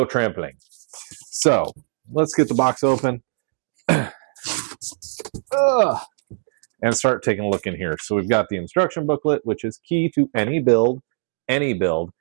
trampling. So let's get the box open and start taking a look in here. So we've got the instruction booklet, which is key to any build,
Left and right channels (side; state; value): left; silent; digital silence